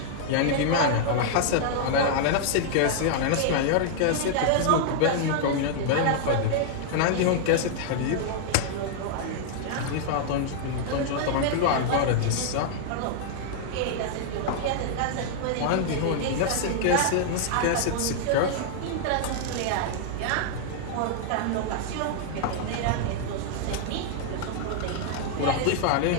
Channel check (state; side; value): different; both; correlation -0.01